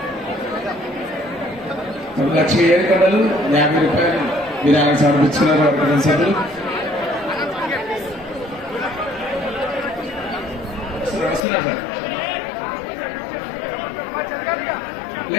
లక్ష్మీ ఏడుకొండలు 50 రూపాయలు విరాళం సమర్పించుకున్నారు వారి కుటుంబ సభ్యులు. వస్తున్నారు సార్.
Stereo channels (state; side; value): drops out; right; at 11.4 s